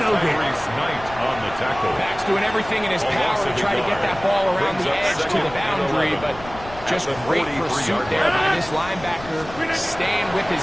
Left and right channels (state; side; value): noise; left; rumble, 16 dB below the sound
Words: Scott's doing everything in his power to try to get that ball around the edge to the boundary, but just great pursuit there by this linebacker, staying with